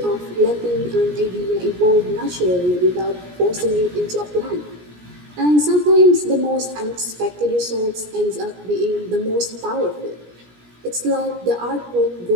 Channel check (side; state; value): left; late; 17 ms